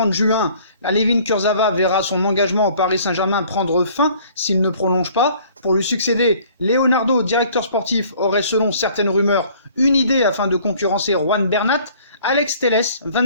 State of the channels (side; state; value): both; inverted; correlation -0.54